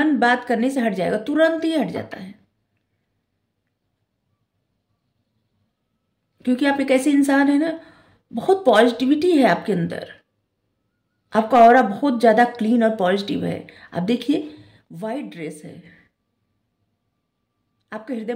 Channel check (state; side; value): identical; both; correlation 1.00